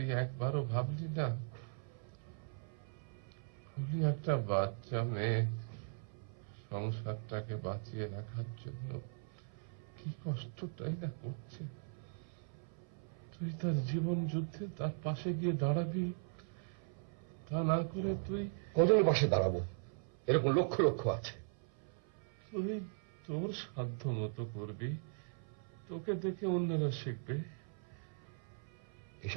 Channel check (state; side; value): silent; left; 52 dB below the other